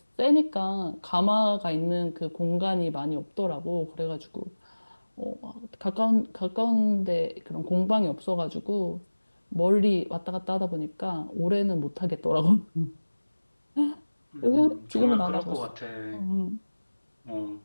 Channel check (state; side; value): inverted; both; correlation -1.00